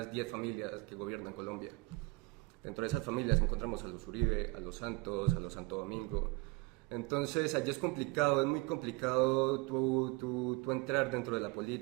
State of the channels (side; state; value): left; quieter; 22.9 dB